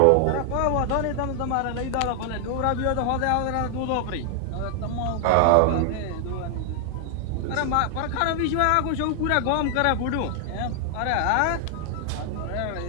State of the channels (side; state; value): both; different; correlation 0.00